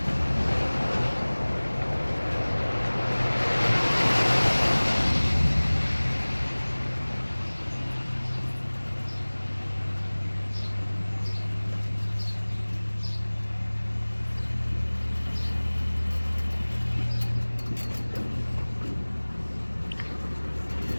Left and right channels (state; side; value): inverted; both; correlation -1.00